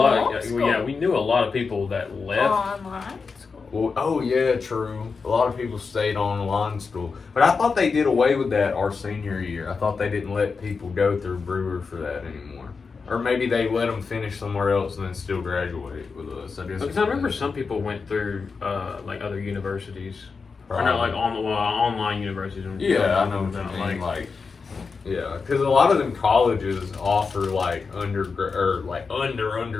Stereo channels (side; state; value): right; quieter; 4.9 dB